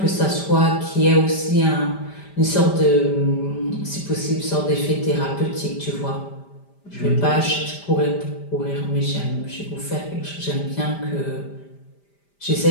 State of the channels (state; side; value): late; right; 5.0 ms